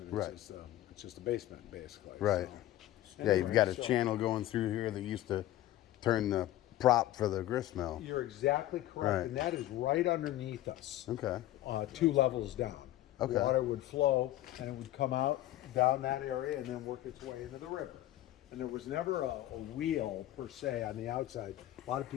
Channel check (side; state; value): right; quieter; 14.5 dB